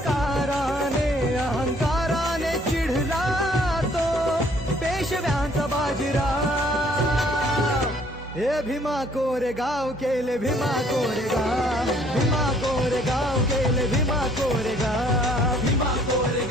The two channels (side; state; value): both; normal; correlation 0.61